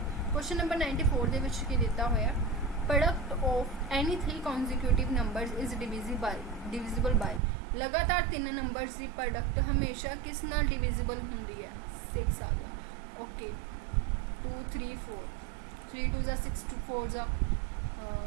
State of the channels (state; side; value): drops out; left; at 7.4 s